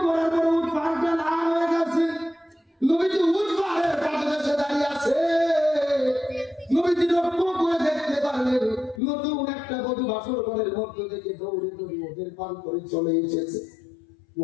পড়ার পর উট পাহাড়টা লাল হয়ে গেছে। নবীজি উট পাহাড়ের পাদদেশে দাঁড়িয়ে আছে। নবীজি লক্ষ্য করে দেখতে পারলেন নতুন একটা বধূ বাসর ঘরের মধ্য থেকে দৌড়ে দৌড়ে ওদের পান করে চলে এসেছে।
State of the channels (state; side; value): drops out; right; at 9.0 s